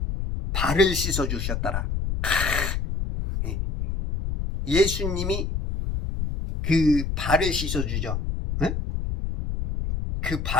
발을 씻어 주셨더라. 예수님이 그 발을 씻어 주죠. 그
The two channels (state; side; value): noise; left; rumble, 2 dB below the sound